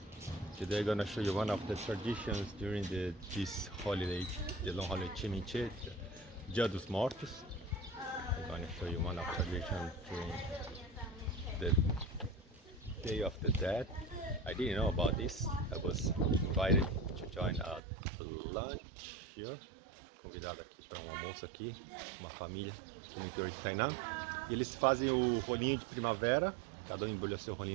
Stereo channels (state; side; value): drops out; left; at 17.8 s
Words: Today I'm gonna show you one of the traditions during this holiday, the long holiday Chiminche, Dia dos Mortos. I'm gonna show you one of traditions during the Day of the Dead. I didn't know about this. I was invited to join a lunch here. Convidado aqui para um almoço aqui, uma família aqui no interior de Tainan. E eles fazem o rolinho de primavera, cada um embrulha seu